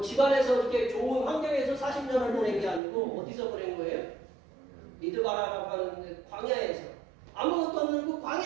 집안에서 이렇게 좋은 환경에서 40년을 보낸 게 아니고, 어디서 보낸 거예요? 미드바라라고 하는 광야에서. 아무것도 없는 그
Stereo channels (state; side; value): drops out; left; at 2.8 s